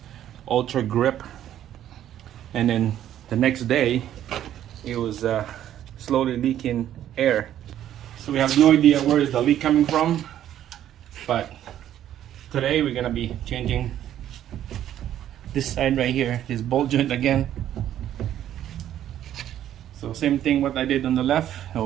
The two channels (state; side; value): quieter; left; 11.4 dB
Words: Ultra Grip. And then the next day it was slowly leaking air. So we have no idea where is the leak coming from, but today we're gonna be changing this side right here, this ball joint again. So same thing what I did on the left, it